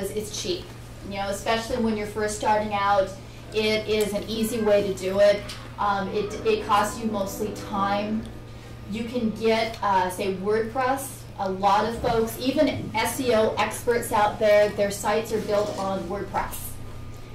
it's cheap. You know, especially when you're first starting out, it is an easy way to do it. It costs you mostly time. You can get, say, WordPress. A lot of folks, even SEO experts out there, their sites are built on WordPress.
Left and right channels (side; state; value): both; identical; correlation 1.00